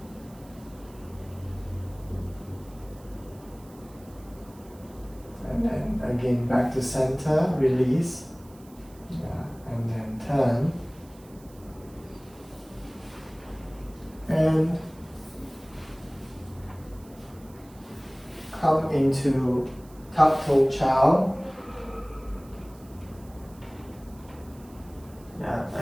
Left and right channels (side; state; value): right; noise; hiss, 26 dB below the sound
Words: And then again back to center, release, and then turn. And come into tuck toe chow.